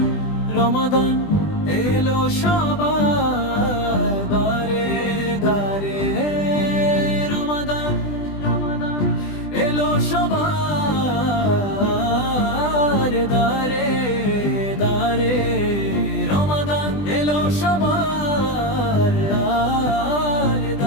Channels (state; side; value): late; right; 20 ms